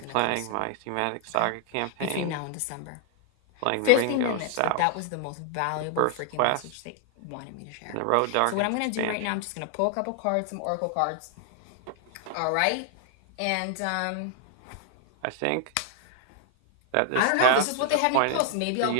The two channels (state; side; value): different; both; correlation 0.00